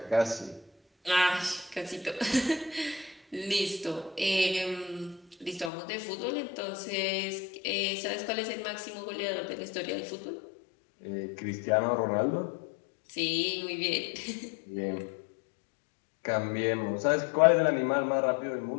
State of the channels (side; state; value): right; drops out; at 5.7 s